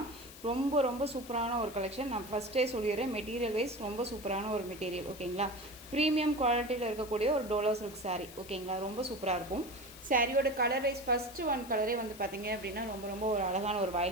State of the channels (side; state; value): left; noise; hiss, 17 dB below the sound